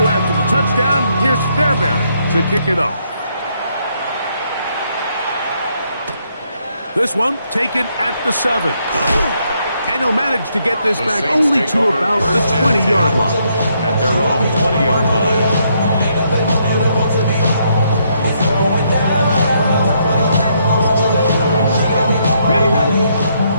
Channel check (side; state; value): both; inverted; correlation -0.74